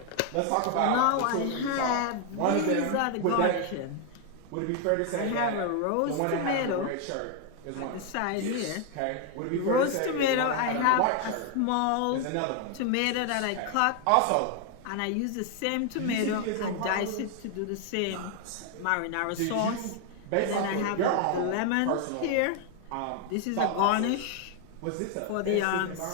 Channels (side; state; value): both; different; correlation 0.00